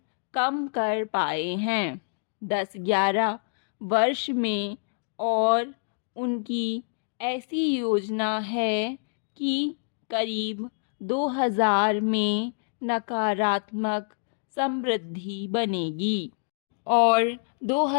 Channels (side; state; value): right; silent; digital silence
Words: कम कर पाए हैं 10-11 वर्ष में। और उनकी ऐसी योजना है कि करीब 2000 में नकारात्मक समृद्धि बनेगी और